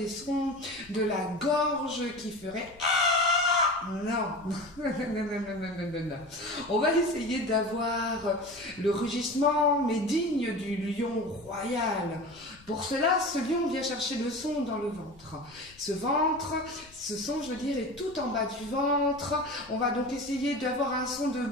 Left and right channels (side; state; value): left; noise; rumble, 25 dB below the sound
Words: sons de la gorge qui feraient... Non. On va essayer d'avoir le rugissement, mais digne du lion royal. Pour cela, ce lion vient chercher le son dans le ventre. Ce son, je veux dire, est tout en bas du ventre. On va donc essayer d'avoir un son de